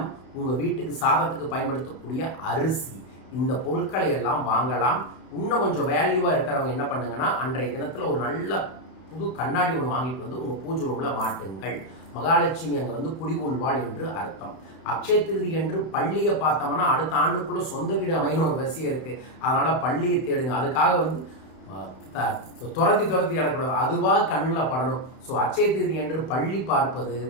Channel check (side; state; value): right; late; 31 ms